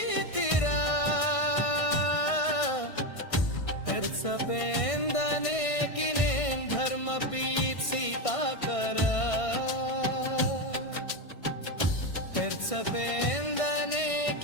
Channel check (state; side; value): late; right; 1.6 ms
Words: पेर्सपेंदने किने धर्म पीत सीता करा पेर्सपेंदने